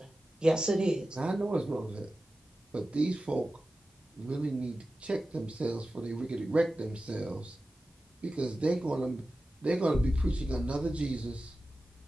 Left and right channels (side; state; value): both; normal; correlation 0.94